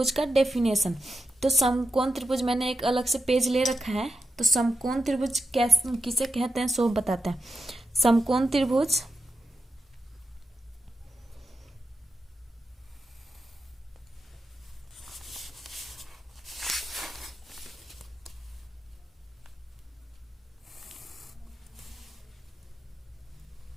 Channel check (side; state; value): both; normal; correlation 0.88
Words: का डेफिनेशन। तो समकोण त्रिभुज मैंने एक अलग से पेज ले रखा है। तो समकोण त्रिभुज कैसे किसे कहते हैं सो बताते हैं। समकोण त्रिभुज